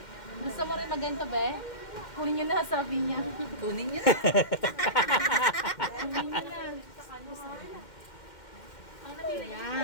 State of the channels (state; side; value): late; right; 2.1 ms